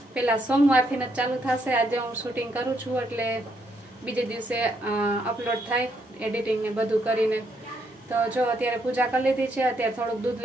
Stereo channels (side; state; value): both; normal; correlation 0.75